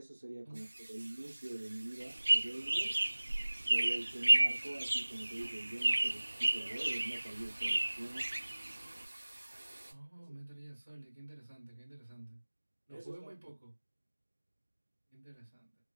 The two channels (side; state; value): both; inverted; correlation -1.00